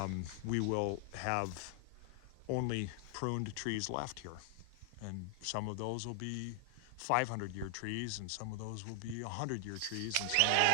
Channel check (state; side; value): different; both; correlation 0.00